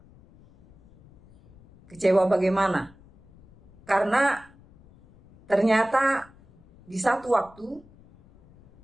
Kecewa bagaimana? Karena ternyata di satu waktu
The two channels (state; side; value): noise; left; rumble, 26 dB below the sound